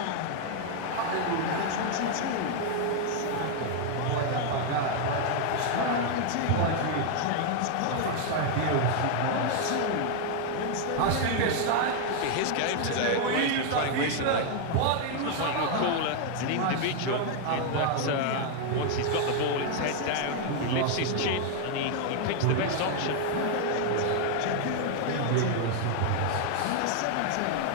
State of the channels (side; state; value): both; different; correlation 0.00